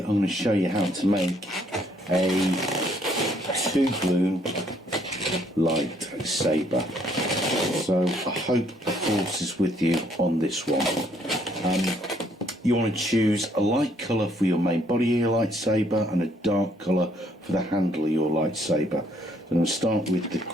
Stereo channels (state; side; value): normal; both; correlation 0.67